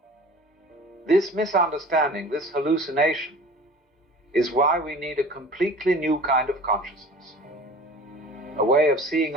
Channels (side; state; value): both; normal; correlation 0.42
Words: this misunderstanding, this hallucination, is why we need a completely new kind of consciousness. A way of seeing